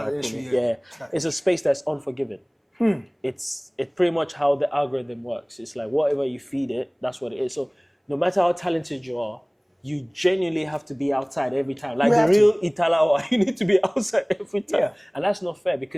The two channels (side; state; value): both; identical; correlation 1.00